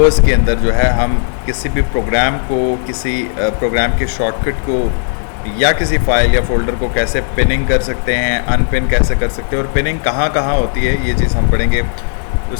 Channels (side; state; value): right; silent; 70 dB below the other